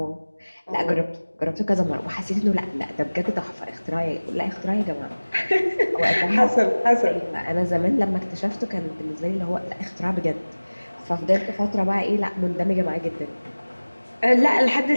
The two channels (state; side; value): inverted; both; correlation -1.00